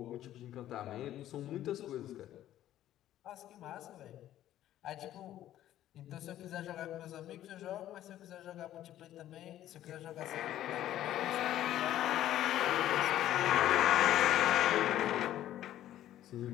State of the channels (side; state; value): right; quieter; 12.7 dB